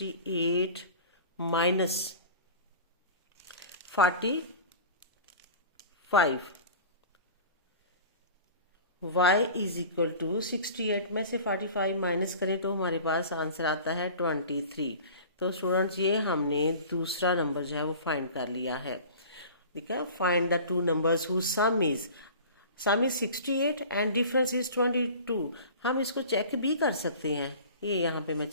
minus 45। y is equal to 68 में से 45 माइनस करें तो हमारे पास आंसर आता है 23। तो स्टूडेंट्स ये हमने दूसरा नंबर जो है वो फाइंड कर लिया है। ठीक है, find the two numbers whose sum is 68 and difference is 22। हम इसको चेक भी कर सकते हैं। ये यहाँ पे मैं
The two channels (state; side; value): inverted; both; correlation -0.40